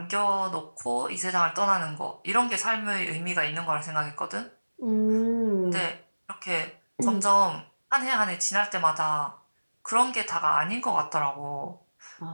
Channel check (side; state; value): both; inverted; correlation -1.00